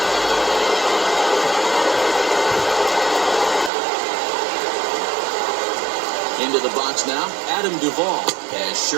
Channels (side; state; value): left; drops out; at 3.7 s